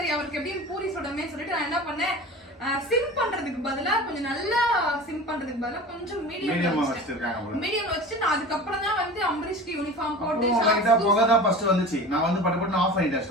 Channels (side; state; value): both; normal; correlation 0.36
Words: அவருக்கு எப்படியும் பூரி சுடமே சொல்லிட்டு நான் என்ன பண்ணேன், சிம் பண்றதுக்கு பதிலா கொஞ்சம் நல்லா சிம் பண்றதுக்கு பதிலா கொஞ்சம் மீடியம் வச்சுட்டு நான் அதுக்கப்புறம் தான் வந்து அம்பரீஷ்க்கு யூனிஃபார்ம் போட்டு புகை தான் ஃபர்ஸ்ட் வந்துச்சு. நான் வந்து பட்டு ஆஃப் பண்ணிட்டேன்